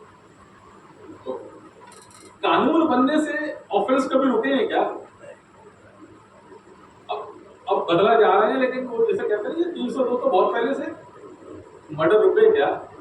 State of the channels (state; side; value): identical; both; correlation 1.00